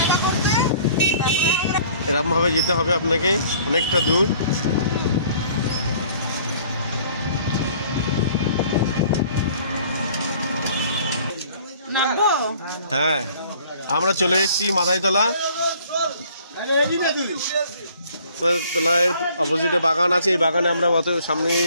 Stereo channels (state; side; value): inverted; both; correlation -0.55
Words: এরকম ভাবে যেতে হবে আপনাকে, অনেকটা দূর। হ্যাঁ, আমরা চলে এসেছি মাথায়তলা। তলায় অপোজিটে বাগান আছে, এই বাগানে আমরা সামনে